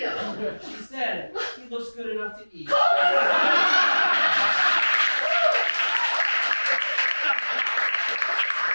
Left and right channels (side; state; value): both; inverted; correlation -1.00